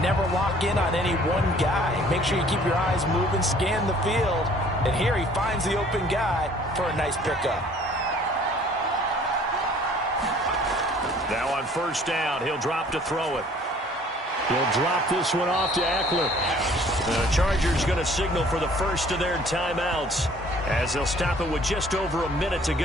lock in on any one guy. Make sure you keep your eyes moving, scan the field, and here he finds the open guy for a nice pickup. Now on first down, he'll drop to throw it. He'll drop this one off to Eckler. The Chargers going to signal for the first of their timeouts as they'll stop it with just over a minute to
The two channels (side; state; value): both; normal; correlation 0.55